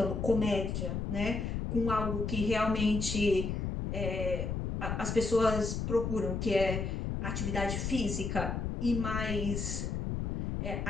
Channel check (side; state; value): left; noise; rumble, 2 dB below the sound